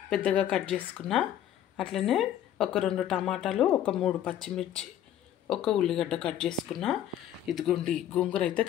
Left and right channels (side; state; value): right; quieter; 11.0 dB